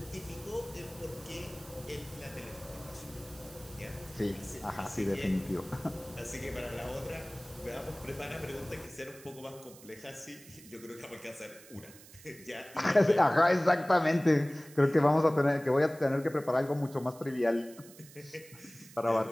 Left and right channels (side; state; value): right; noise; hiss, 20 dB below the sound